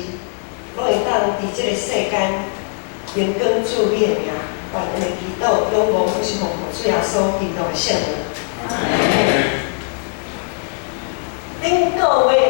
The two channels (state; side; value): silent; right; digital silence